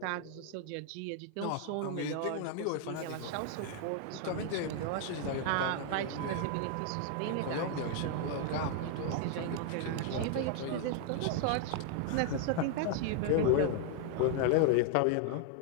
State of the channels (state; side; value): different; both; correlation 0.00